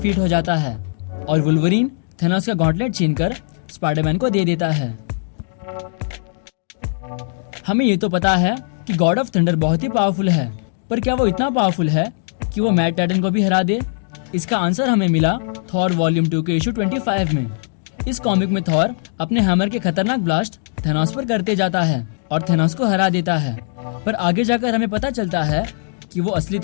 हो जाता है। और वुल्वरीन थेनोस का गॉटलेट छीनकर स्पाइडरमैन को दे देता है। हमें ये तो पता है कि गॉड ऑफ थंडर बहुत ही पावरफुल है, पर क्या वो इतना पावरफुल है कि वो मैट टाइटन को भी हरा दे? इसका आंसर हमें मिला थॉर वॉल्यूम 2 के इशू 25 में। इस कॉमिक में थॉर अपने हैमर के खतरनाक ब्लास्ट थेनोस पर करते जाता है और थेनोस को हरा देता है। पर आगे जाकर हमें पता चलता है कि वो असली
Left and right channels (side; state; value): right; silent; digital silence